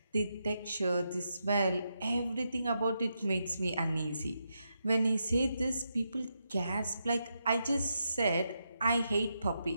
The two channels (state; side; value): inverted; both; correlation -0.84